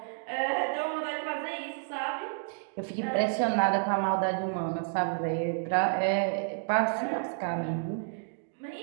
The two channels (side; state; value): left; silent; digital silence